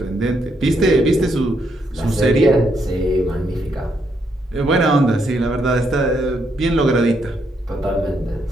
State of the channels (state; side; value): normal; both; correlation 0.76